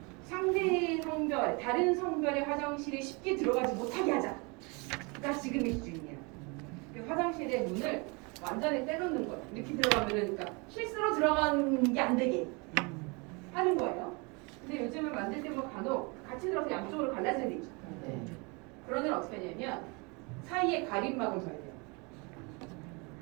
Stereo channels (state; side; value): quieter; left; 30.0 dB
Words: 상대 성별, 다른 성별의 화장실에 쉽게 들어가지 못하게 하자가 지금의 기준이에요. 그 화장실의 문을 완전히 떼놓는 거예요. 이렇게 들어가면은 그러니까 이게 안 되게 하는 거예요. 근데 요즘은 만들 때 뭐 간혹 같이 들어서 양쪽으로 갈라져야 되죠. 그런 애는 어떻게 하냐면 사이에 가림막을 둬야 돼요.